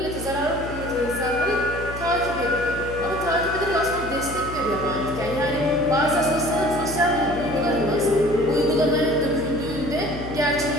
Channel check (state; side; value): noise; left; hum, 10 dB below the sound